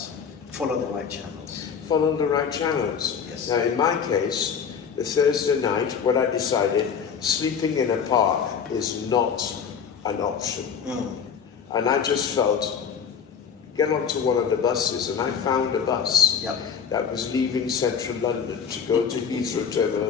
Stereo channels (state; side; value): quieter; right; 6.9 dB